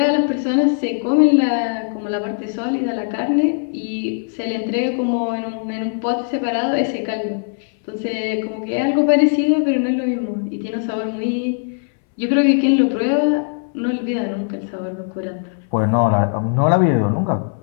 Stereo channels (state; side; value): silent; right; 63 dB below the other